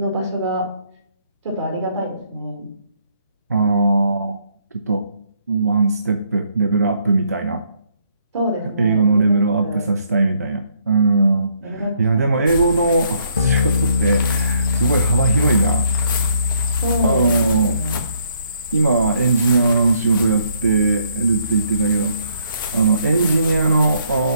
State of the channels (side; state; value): both; inverted; correlation -0.69